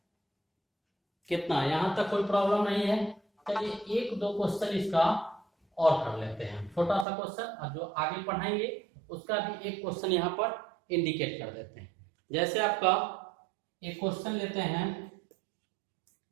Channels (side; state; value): left; drops out; at 7.1 s